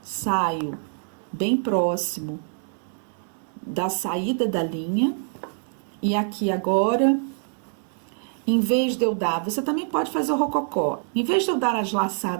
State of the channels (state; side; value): silent; left; digital silence